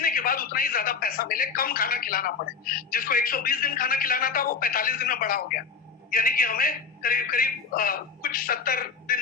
के बाद उतना ही ज्यादा पैसा मिले, कम खाना खिलाना पड़े। जिसको 120 दिन खाना खिलाना था वो 45 दिन में बड़ा हो गया, यानी कि हमें करीब करीब कुछ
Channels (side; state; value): right; quieter; 5.4 dB